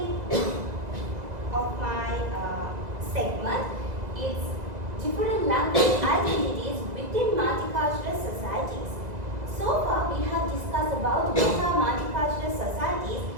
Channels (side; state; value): left; late; 2.0 ms